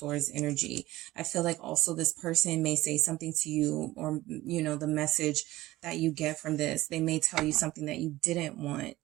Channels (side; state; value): left; quieter; 17.2 dB